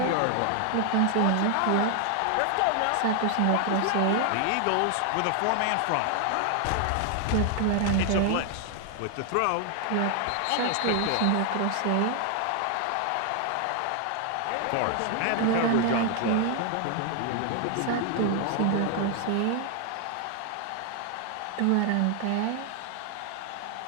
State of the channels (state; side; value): different; both; correlation 0.00